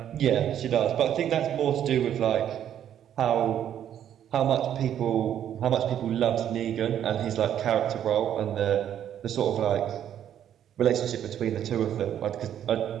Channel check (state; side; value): quieter; left; 10.1 dB